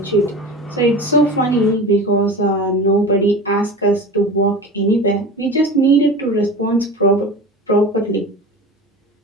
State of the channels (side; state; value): both; normal; correlation 0.33